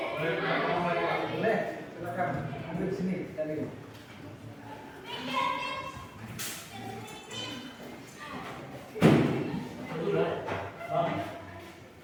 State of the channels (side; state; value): both; identical; correlation 1.00